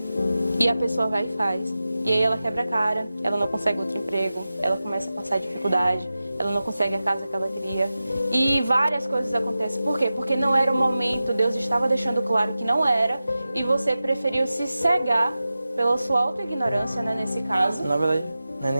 E a pessoa vai e faz. E aí ela quebra a cara, ela não consegue outro emprego, ela começa a passar dificuldade, ela não consegue a casa que ela queria. E várias coisas acontecem. Por quê? Porque não era o momento, Deus estava deixando claro que não era, e você preferiu se cegar pela sua autoignorância, né, nesse caso. Na verdade, não é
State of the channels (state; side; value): inverted; both; correlation -0.94